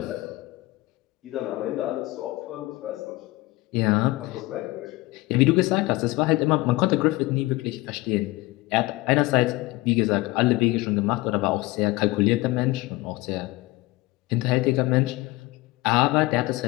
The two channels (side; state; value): right; quieter; 20.6 dB